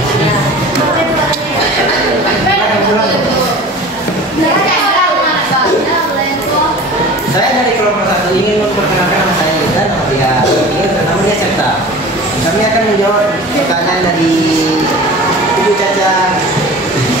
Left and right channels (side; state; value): both; normal; correlation 0.39